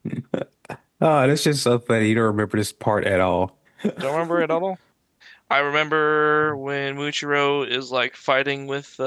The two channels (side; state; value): both; identical; correlation 1.00